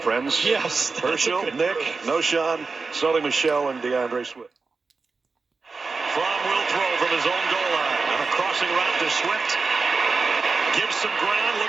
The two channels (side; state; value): left; quieter; 4.4 dB